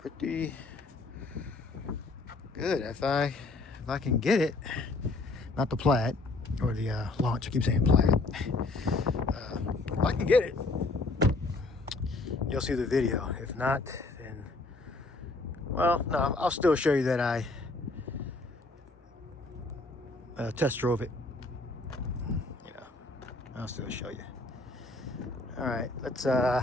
good if I can get it. Not the Plaid or the Launch. I keep saying Plaid. If I can get it, you'll see the video. If not, then well, no, I'll still show you that I test drove it. You know, I'll still show you. All right, let's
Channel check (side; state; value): right; quieter; 3.2 dB